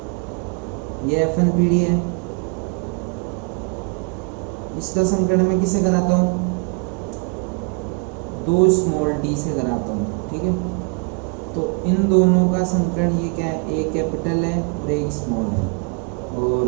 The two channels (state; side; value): quieter; left; 35.7 dB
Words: है, इसका संकरण मैं किससे कराता हूँ, 2 स्मॉल d से कराता हूँ। ठीक है, तो इन दोनों का संकरण ये क्या है, एक कैपिटल है और एक स्मॉल है,